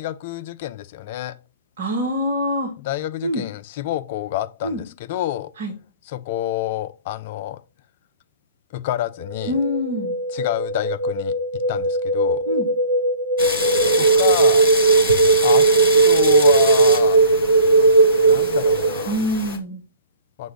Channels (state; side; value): inverted; both; correlation -0.49